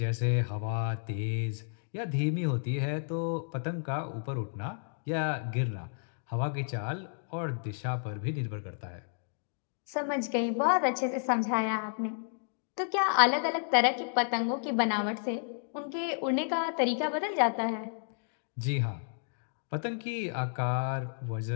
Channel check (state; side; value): silent; right; digital silence